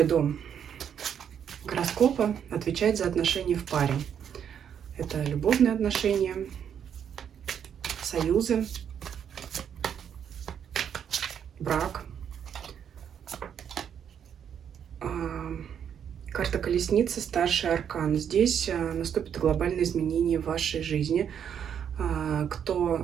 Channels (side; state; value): left; quieter; 8.4 dB